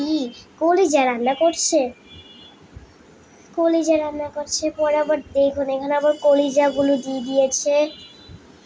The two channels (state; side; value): identical; both; correlation 1.00